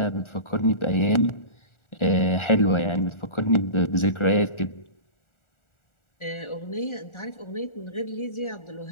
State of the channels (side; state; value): right; late; 1.4 ms